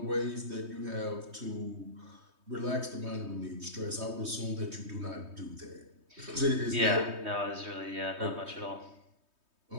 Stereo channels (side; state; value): left; late; 3.2 ms